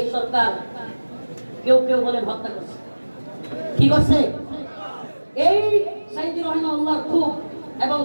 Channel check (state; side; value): inverted; both; correlation -1.00